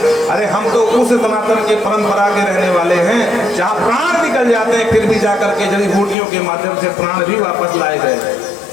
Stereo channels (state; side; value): drops out; right; at 6.2 s